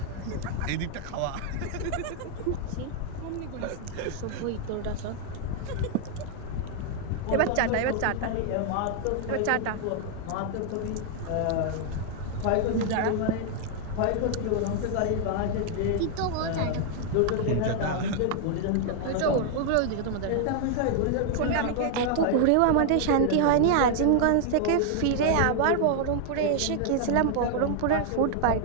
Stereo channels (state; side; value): different; both; correlation 0.00